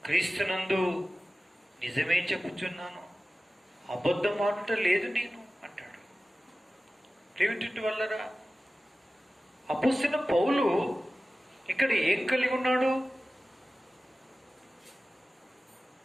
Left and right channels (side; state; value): both; normal; correlation 0.96